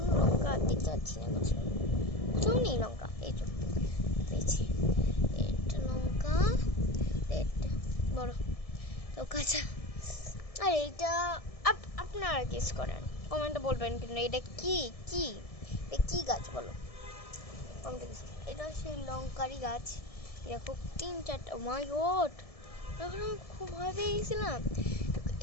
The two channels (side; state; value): right; late; 1.7 ms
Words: লঙ্কা দেখতে পাচ্ছি না, কোথাও নেই লঙ্কা। এই তো পেয়েছি, এটা লঙ্কা, এটা বড় তো কাঁচা। আর এইটা আপনারা গেস করেন, কমেন্টে বলবেন কিন্তু এটা কি কি এটা কি গাছ বলো। এটা সেই লঙ্কারি গাছ। দেখো 3-4টা, মাই গড, এখন আমি খুব ভয় পেয়ে গেছিলাম।